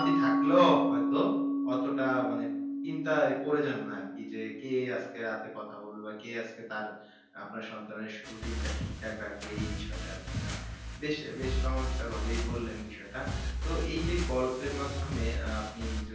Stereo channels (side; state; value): both; identical; correlation 1.00